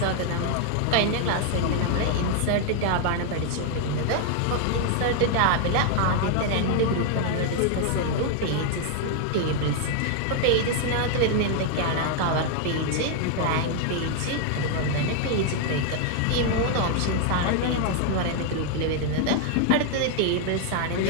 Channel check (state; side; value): different; both; correlation 0.00